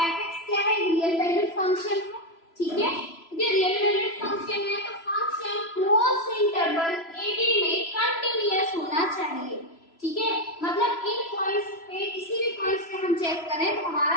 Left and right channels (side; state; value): right; late; 3.0 ms